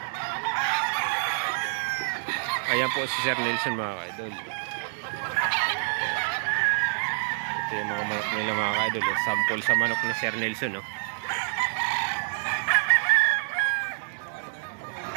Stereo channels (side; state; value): left; silent; 59 dB below the other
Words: Ayan po si Sir Nelson mga ka-idol. Ito yung mga manok nila mga ka-idol. Sample sa manok ni Sir Nelson.